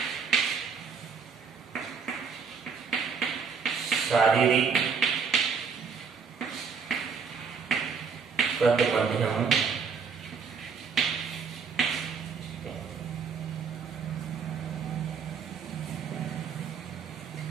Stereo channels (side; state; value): left; quieter; 5.8 dB